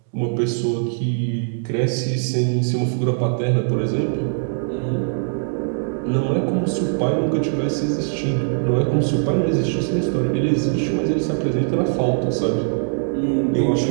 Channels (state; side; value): silent; left; digital silence